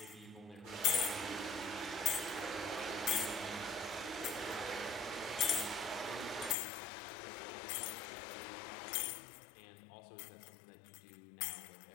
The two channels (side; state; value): right; drops out; at 6.6 s